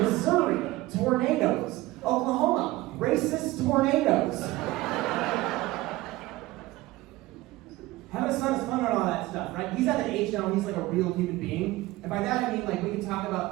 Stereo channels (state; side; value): quieter; left; 18.4 dB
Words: tornadoes. Oklahoma, racist tornadoes. Having a son is fun and all that stuff, right? He's at the age now when he's like a real human being. And by that I mean like we can talk about